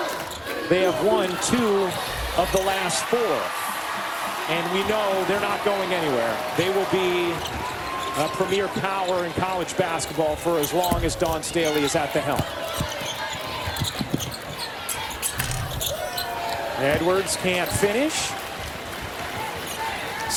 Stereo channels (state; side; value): identical; both; correlation 1.00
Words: They have won 2 of the last 4. And we know they're not going anywhere. They will be a premier power in college basketball for as long as Dawn Staley is at the helm. Edwards can't finish.